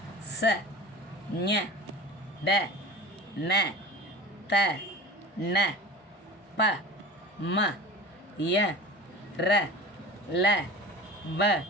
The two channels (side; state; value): both; normal; correlation 0.35